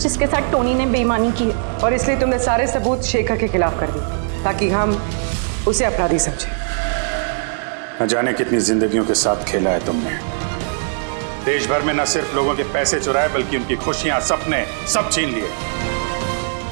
साथ टोनी ने बेईमानी की है। और इसलिए तुमने सारे सबूत शेखर के खिलाफ कर दिए ताकि हम उसे अपराधी समझें। न जाने कितनी जिंदगियों के साथ खेला है तुमने। देश भर में न सिर्फ लोगों के पैसे चुराए बल्कि उनकी खुशियां, सपने सब छीन लिए।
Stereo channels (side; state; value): left; silent; digital silence